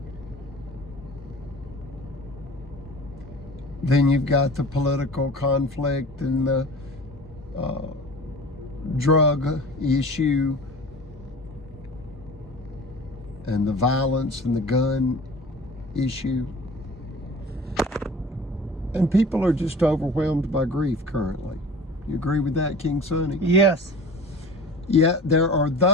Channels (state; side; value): normal; both; correlation 0.41